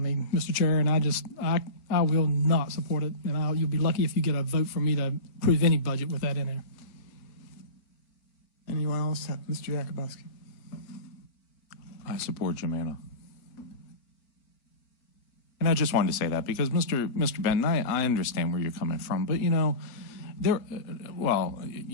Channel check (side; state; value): right; late; 4.4 ms